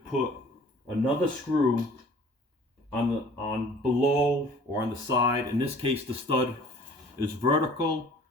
another screw on below or on the side. In this case, the stud is vertical,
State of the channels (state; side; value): normal; both; correlation 0.50